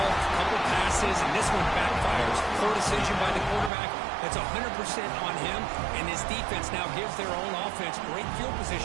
a couple passes, and this one backfires. Poor decision by the quarterback. That's 100% on him, and his defense now gives their own offense great field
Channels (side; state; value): left; drops out; at 3.7 s